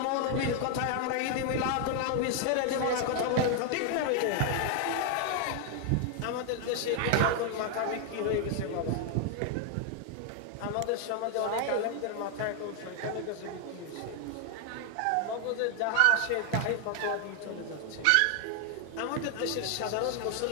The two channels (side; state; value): both; different; correlation 0.00